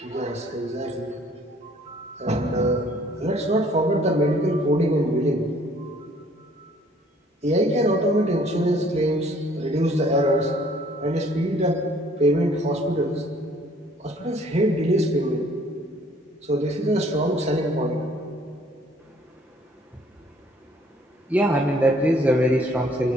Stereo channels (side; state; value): both; normal; correlation 0.59